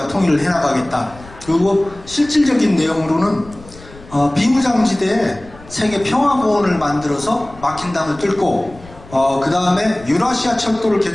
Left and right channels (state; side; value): noise; left; rumble, 20 dB below the sound